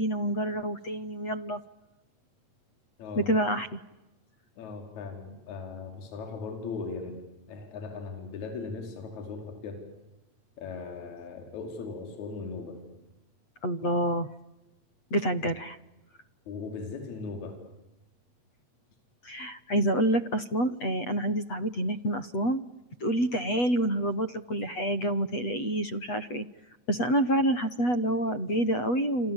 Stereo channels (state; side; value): late; right; 8.2 ms